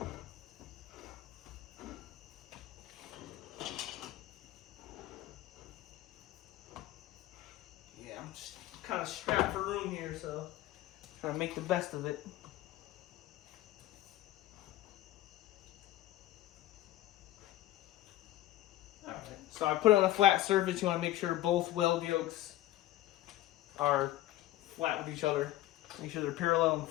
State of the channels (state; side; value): quieter; right; 15.2 dB